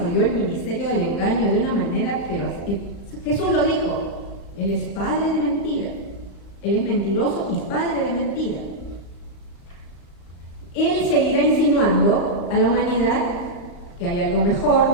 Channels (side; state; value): right; late; 35 ms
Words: el ministerio del engaño de una manera, pero Jesús lo dijo, él es padre de mentira, él es mentiroso y padre de mentira. Él seguirá insinuando a la humanidad que hay algo mejor,